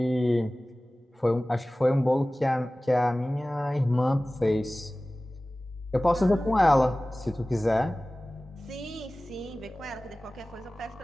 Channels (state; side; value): normal; both; correlation 0.98